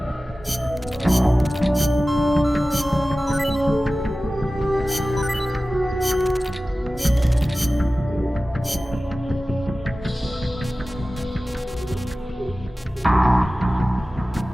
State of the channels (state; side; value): normal; both; correlation 0.96